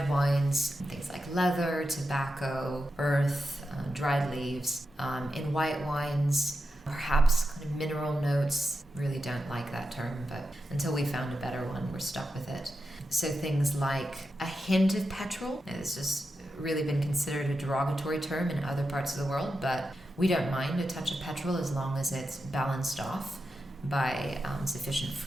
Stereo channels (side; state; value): both; normal; correlation 0.89